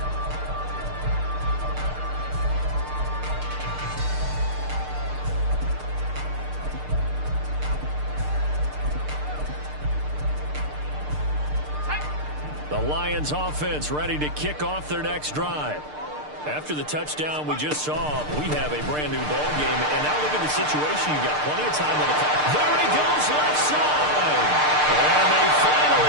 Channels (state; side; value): late; left; 6.6 ms